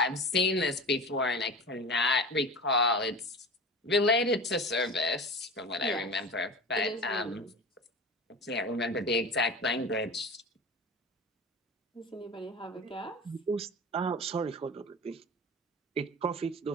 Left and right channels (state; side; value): normal; both; correlation 0.32